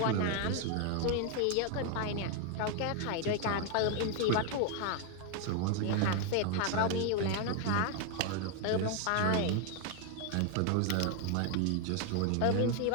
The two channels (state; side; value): different; both; correlation 0.01